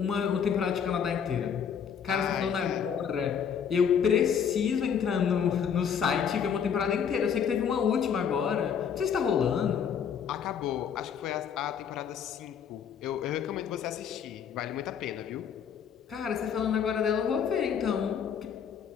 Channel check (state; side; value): quieter; right; 7.6 dB